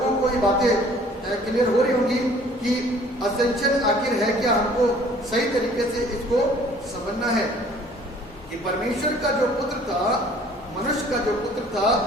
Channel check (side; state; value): both; normal; correlation 0.54